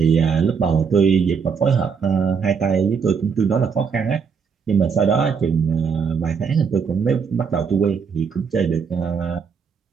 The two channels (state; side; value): quieter; left; 6.1 dB